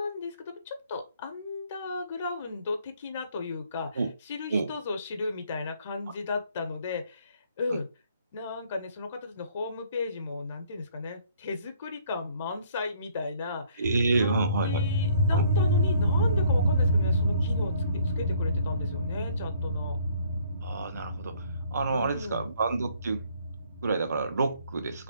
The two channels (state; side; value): inverted; both; correlation -0.61